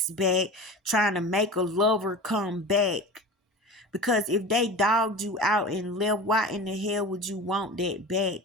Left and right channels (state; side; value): normal; both; correlation 0.33